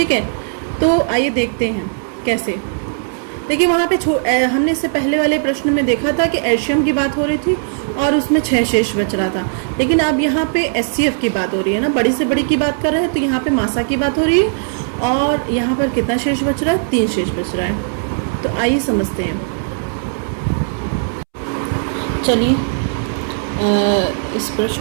है, तो आइए देखते हैं कैसे। देखिए वहाँ पे हमने इससे पहले वाले प्रश्न में देखा था कि एल्शियम की बात हो रही थी और उसमें 6 शेष बच रहा था, लेकिन अब यहाँ पे एचसीएफ की बात हो रही है ना, बड़ी से बड़ी की बात कर रहे हैं, तो यहाँ पे मासा की बात हो रही है और यहाँ पर कितना शेष बच रहा है? 3 शेष बच रहा है। तो आइए समझते हैं। चलिए इस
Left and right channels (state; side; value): silent; left; 68 dB below the other